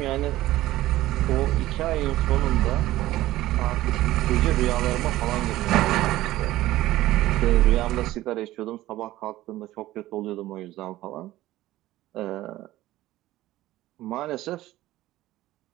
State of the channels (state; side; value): quieter; left; 15.9 dB